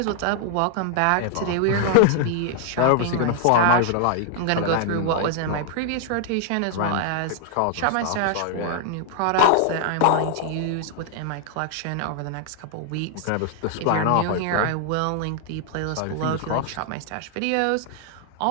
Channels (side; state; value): both; different; correlation 0.00